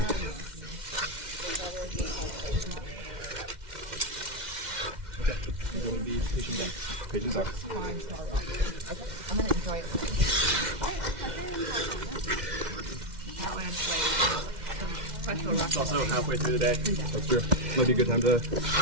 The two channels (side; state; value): left; late; 2.1 ms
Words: Pigeons up. I'm gonna enjoy it. That way it's like It's also halfway through the day. That's true. Might be a good time to